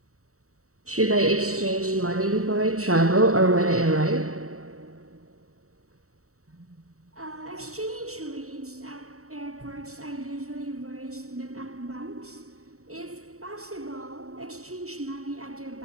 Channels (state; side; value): late; left; 0.64 ms